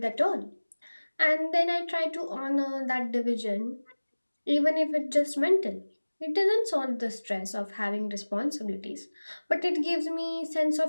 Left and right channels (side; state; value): both; inverted; correlation -1.00